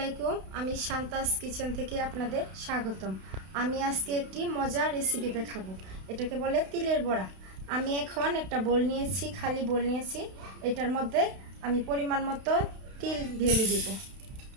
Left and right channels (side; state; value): left; late; 32 ms